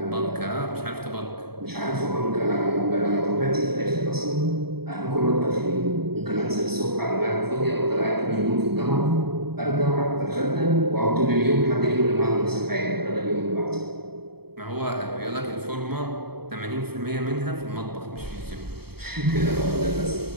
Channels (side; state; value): left; late; 0.96 ms